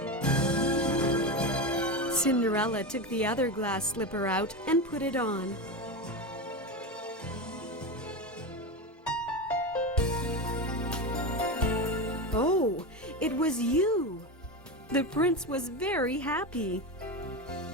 Cinderella took the other glass slipper out and put it on. Oh, it was you! The prince was very happy.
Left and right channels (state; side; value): normal; both; correlation 0.19